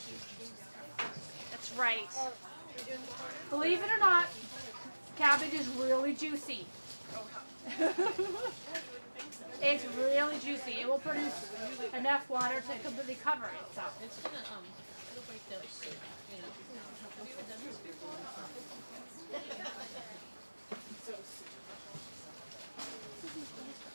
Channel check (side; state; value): both; inverted; correlation -1.00